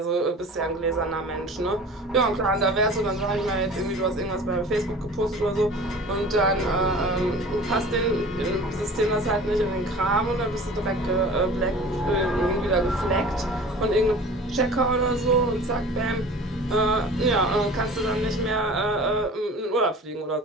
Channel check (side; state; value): both; normal; correlation 0.41